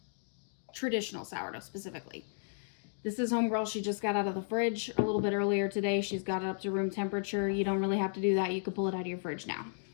Traditional sourdough specifically. This is homegirl. She just got out of the fridge a little bit earlier today. She's got it up to room temperature. You don't really have to do that. You could pull it out of your fridge now.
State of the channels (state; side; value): silent; right; digital silence